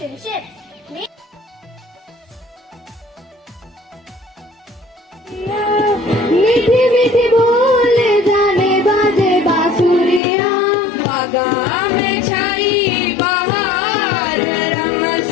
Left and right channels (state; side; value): drops out; right; at 10.2 s